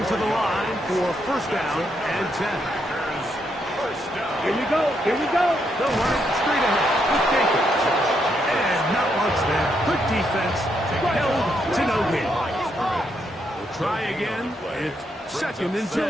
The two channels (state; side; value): normal; both; correlation 0.78